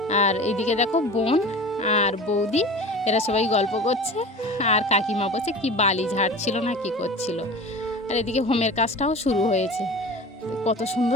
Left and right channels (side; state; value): both; normal; correlation 0.36